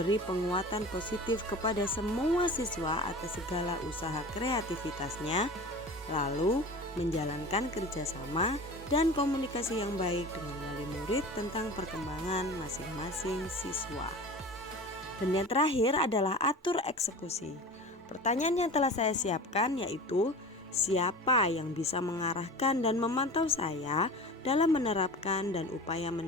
penguatan positif kepada semua siswa atas segala usaha kreativitasnya, lalu menjalankan kerjasama dan komunikasi yang baik dengan wali murid tentang perkembangan masing-masing siswa. Dan yang terakhir adalah atur eksekusi. Pertanyaan yang telah saya siapkan yaitu, siapa yang bisa mengarahkan dan memantau saya dalam menerapkan dan upaya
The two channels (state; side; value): normal; both; correlation 0.35